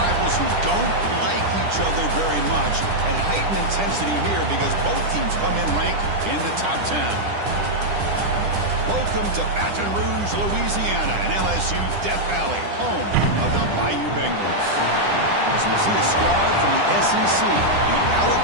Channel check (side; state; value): left; late; 10 ms